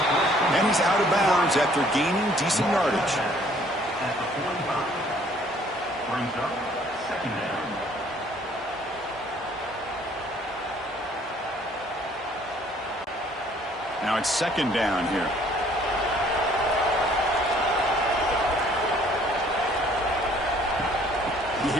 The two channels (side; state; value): both; normal; correlation 0.59